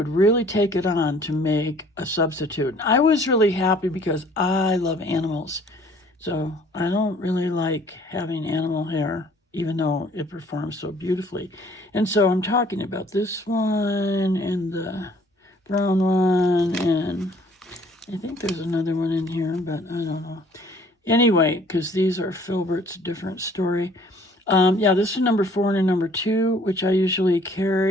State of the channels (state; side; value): normal; both; correlation 0.57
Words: really take it on to make a substitute. I was really happy, because I love animals. So I don't really like having animal hair, even though it performs so beautifully. And so I'm talking about this one and the brown one, and I think there's another one in here, but I don't know. Anyway, because these are Filbert's, different story. This is number 4 and a number 2, which I usually